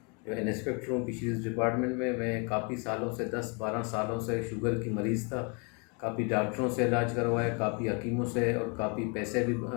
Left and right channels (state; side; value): quieter; right; 34.2 dB